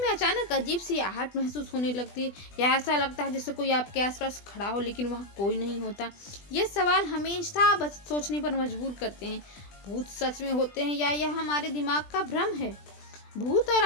में अचानक अजीब सी आहट महसूस होने लगती है या ऐसा लगता है जैसे कोई आपके आसपास खड़ा हो लेकिन वहाँ कोई नहीं होता। ये सवाल हमेशा सोचने पर मजबूर करते हैं। भूत सच में होते हैं या यह हमारे दिमाग का भ्रम है? भूत और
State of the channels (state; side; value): late; right; 20 ms